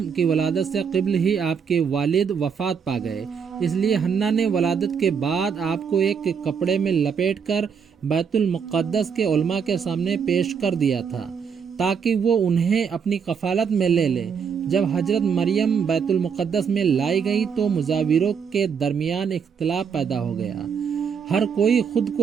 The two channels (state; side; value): quieter; left; 6.6 dB